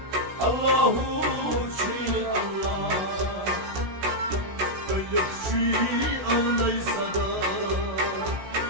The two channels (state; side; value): late; left; 16 ms